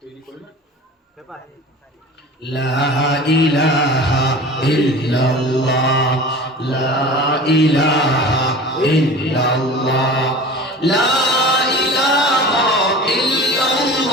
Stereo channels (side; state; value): both; normal; correlation 0.38